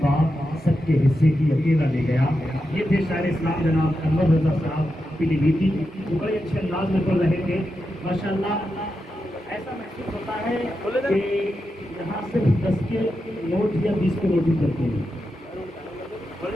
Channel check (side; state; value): both; normal; correlation 0.88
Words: सबके हिस्से की अकेला ले गया। ये थे शायर इस्लाम जनाब अनवर रज़ा साहब पीलीभीती, जो बड़े अच्छे अंदाज में बोल रहे थे माशाअल्लाह। ऐसा महसूस होता है कि यहाँ सिर्फ 10 के नोट या 20 के नोट ही चलते हैं,